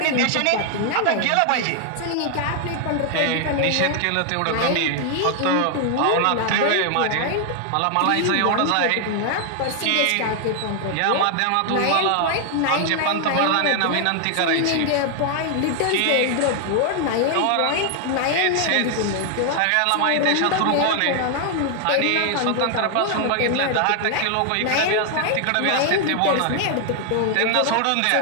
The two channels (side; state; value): both; different; correlation 0.00